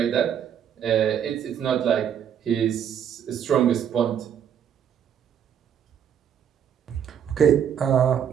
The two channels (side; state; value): left; quieter; 8.8 dB